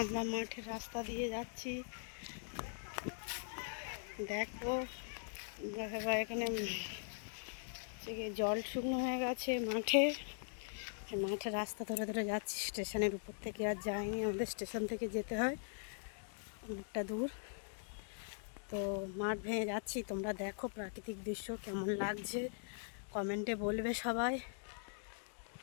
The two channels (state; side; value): silent; right; digital silence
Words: আমরা মাঠের রাস্তা দিয়ে যাচ্ছি। দেখো আমরা এখানে জল শুকনো হয়ে গেছে মাঠে। মাঠের রাস্তা ধরে ধরে যাচ্ছি। স্টেশনের উপর থেকে আর যাইনি, আমাদের স্টেশন থেকে যেতে হয় অনেকটা দূর। তো মাঠ ভেঙে যাচ্ছি। তোমরা দেখো প্রাকৃতিক দৃশ্য কেমন লাগছে, কমেন্টে বলবে সবাই।